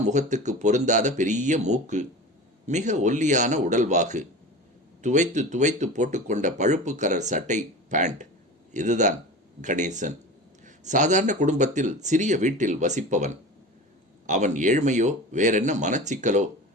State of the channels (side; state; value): both; normal; correlation 0.33